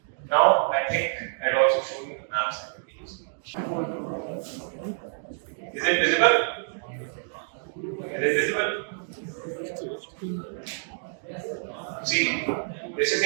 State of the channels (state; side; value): silent; left; digital silence